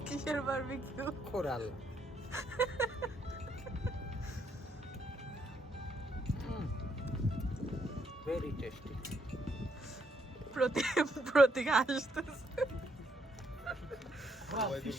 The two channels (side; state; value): both; normal; correlation 0.73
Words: কিসের বারবিকিউ? কোরাল। Very tasty. প্রতীক আসতেছে। Bravo,